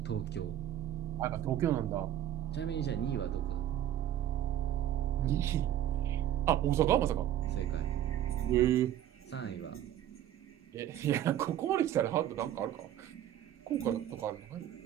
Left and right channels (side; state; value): left; quieter; 11.5 dB